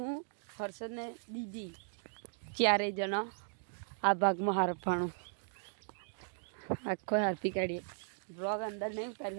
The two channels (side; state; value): left; silent; digital silence